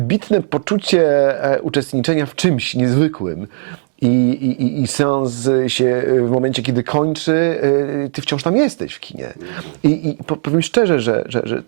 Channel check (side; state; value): left; silent; digital silence